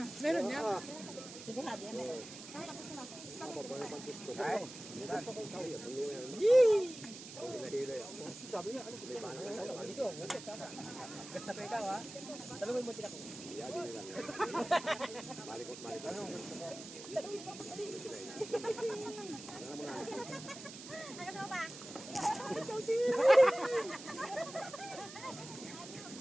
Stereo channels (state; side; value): noise; right; hiss, 13 dB below the sound